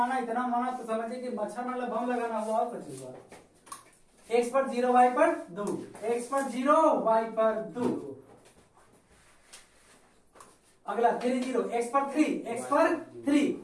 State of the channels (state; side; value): identical; both; correlation 1.00